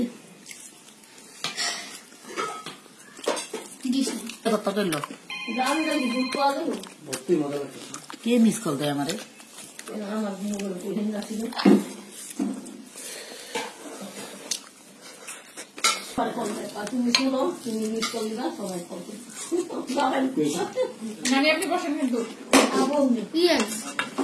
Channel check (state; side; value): identical; both; correlation 1.00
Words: কত করলো জান জানি দুধ পাওয়া গেল ভর্তি মজা লাগছে কে মিস কল দেয় আমারে আমার মোবাইল কোহিন রাখিল তুমি শুনো তুমি মিস করলি না সবাই করবে নানি আপনি বসেন কিন্তু ইয়েস